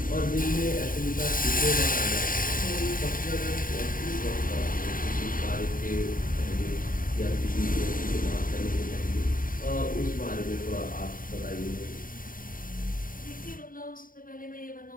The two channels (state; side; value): late; right; 0.41 ms